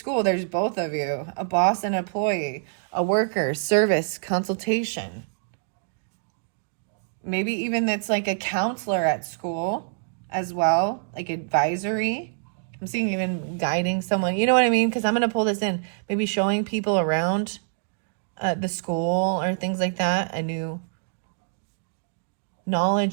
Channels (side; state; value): left; silent; digital silence